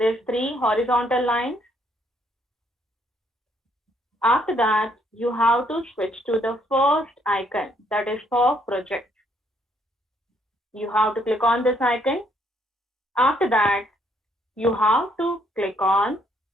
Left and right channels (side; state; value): both; normal; correlation 0.69